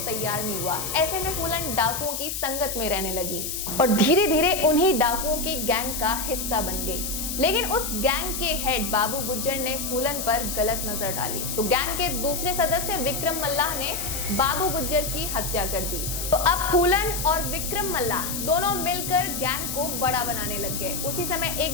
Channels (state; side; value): noise; left; hiss, 4 dB below the sound